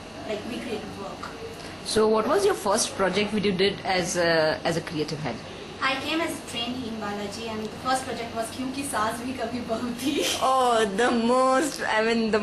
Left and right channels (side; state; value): both; identical; correlation 1.00